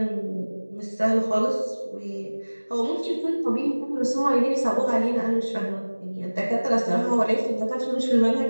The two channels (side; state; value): both; inverted; correlation -1.00